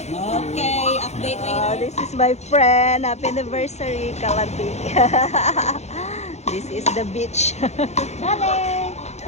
update. This is my friend. Happy anniversary, Kalandi. This is the beach. Charlie.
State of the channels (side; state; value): right; late; 0.32 ms